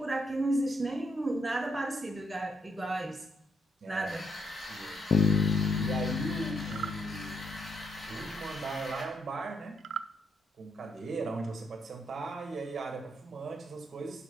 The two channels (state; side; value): normal; both; correlation 0.76